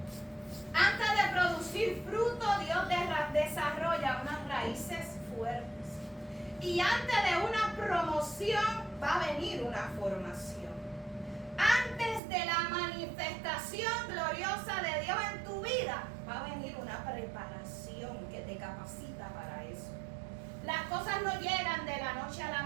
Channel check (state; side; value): drops out; left; at 12.2 s